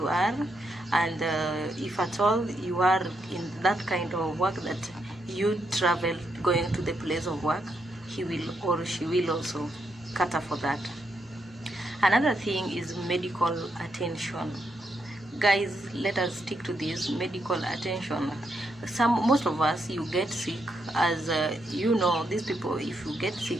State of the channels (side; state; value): both; normal; correlation 0.79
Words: are, and if at all you are in that kind of work that you travel going to the place of work, he will or she will also cater for that. Another thing is medical attention. Guys, let us stick to this medical attention. Most of us, you get sick, as you know, these people, if you get